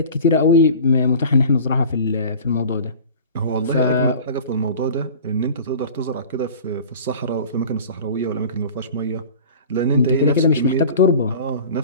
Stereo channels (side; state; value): both; inverted; correlation -0.40